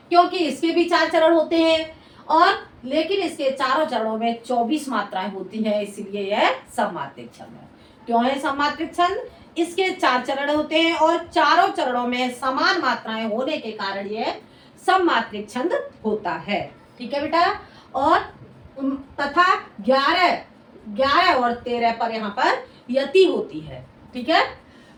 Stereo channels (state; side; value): identical; both; correlation 1.00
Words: क्योंकि इसके भी 4 चरण होते हैं, और लेकिन इसके चारों चरणों में 24 मात्राएं होती हैं, इसीलिए यह सममात्रिक छंद है। क्यों है सममात्रिक छंद? इसके 4 चरण होते हैं, और चारों चरणों में समान मात्राएं होने के कारण यह सममात्रिक छंद होता है। ठीक है बेटा, और तथा 11 और 13 पर यहाँ पर यति होती है। ठीक है,